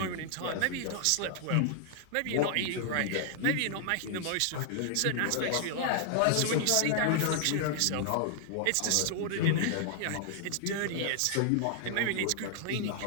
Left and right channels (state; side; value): different; both; correlation -0.01